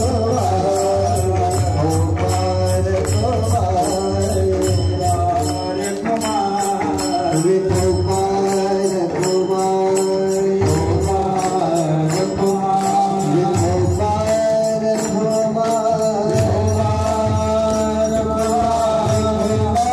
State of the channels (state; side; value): identical; both; correlation 1.00